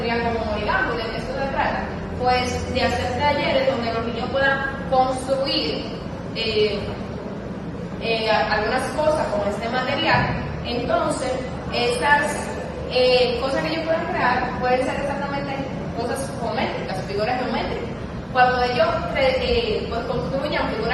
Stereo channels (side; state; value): both; identical; correlation 1.00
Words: como origami. ¿De qué esto se trata? Pues de hacer talleres donde los niños puedan construir algunas cosas con este material. Entonces, estas cosas que ellos pueden crear pueden ser exactamente cosas geométricas, figuras geométricas. Cuando ellos pues construyan